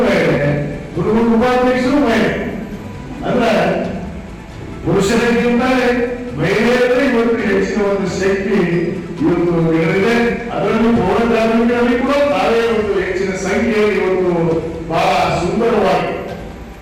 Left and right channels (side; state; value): both; identical; correlation 1.00